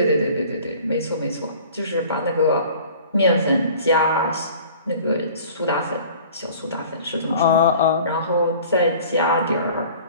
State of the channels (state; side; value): inverted; both; correlation -0.47